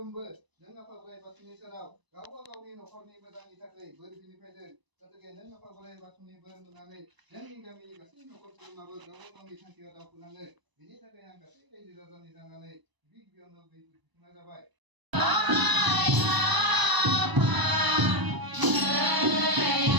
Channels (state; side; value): late; left; 1.0 ms